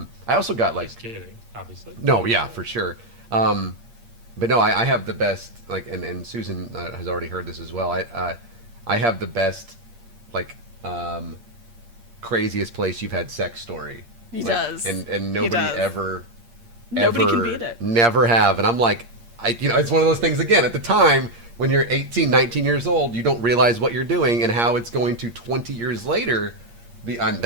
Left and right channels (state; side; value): late; left; 8.6 ms